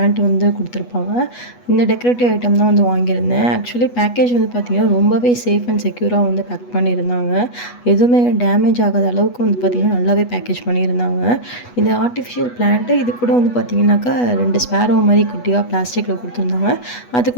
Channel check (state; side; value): late; right; 8.2 ms